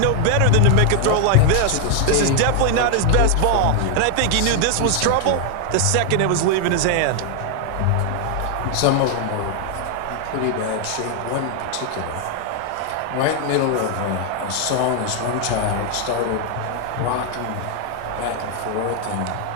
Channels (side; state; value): both; different; correlation 0.00